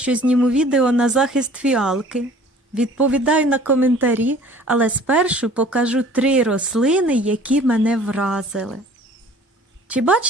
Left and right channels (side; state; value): both; normal; correlation 0.50